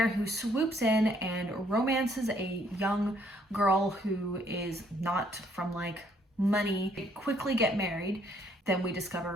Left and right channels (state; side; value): normal; both; correlation 0.67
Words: who swoops in and romances a young girl who is not from like money. They quickly get married. Then we